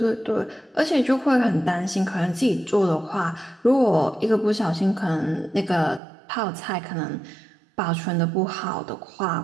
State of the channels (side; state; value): left; drops out; at 6.0 s